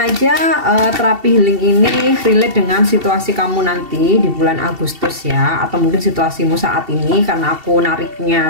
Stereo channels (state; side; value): late; left; 2.7 ms